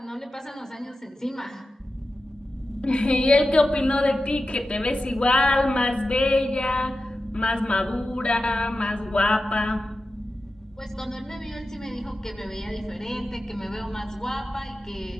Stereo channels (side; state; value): both; normal; correlation 0.93